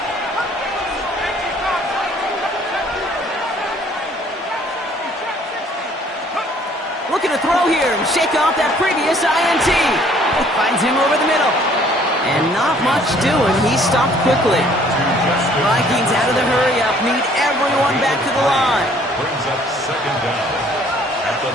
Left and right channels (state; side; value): normal; both; correlation 0.59